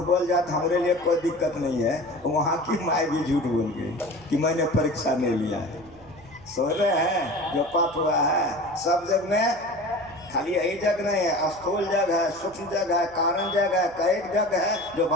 बोल जाए तो हमारे लिए कोई दिक्कत नहीं है। वहाँ की माँ भी झूठ बोल गई कि मैंने परीक्षा नहीं लिया है। सो रहे हैं, जो पाठ हुआ है सब जग में, खाली यही जग नहीं है, स्थूल जग है, सूक्ष्म जग है, कारण जग है, कईक जग है। जो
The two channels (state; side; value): noise; right; hum, 24 dB below the sound